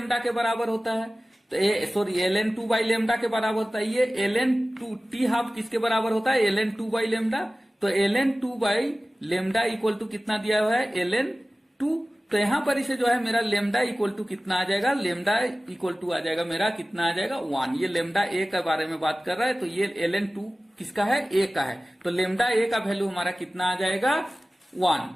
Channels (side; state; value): both; normal; correlation 0.96